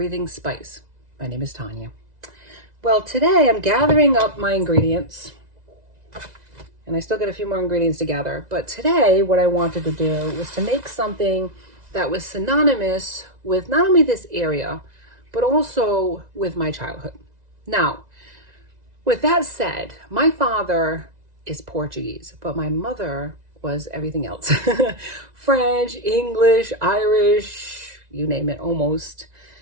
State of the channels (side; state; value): left; late; 2.0 ms